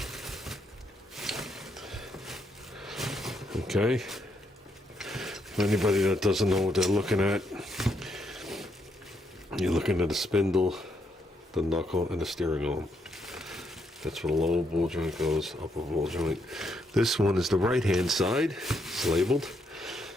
Okay. For anybody that doesn't know what they're looking at, you're looking at the spindle, the knuckle, and the steering arm. That's where the lower ball joint goes, upper ball joint. This one is the right-hand side. It's labeled.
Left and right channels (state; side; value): normal; both; correlation 0.76